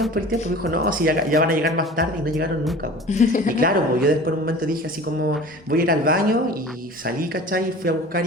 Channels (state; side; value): normal; both; correlation 0.40